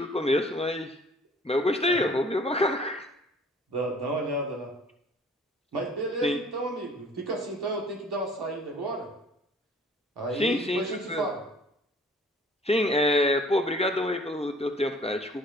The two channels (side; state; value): both; normal; correlation 0.53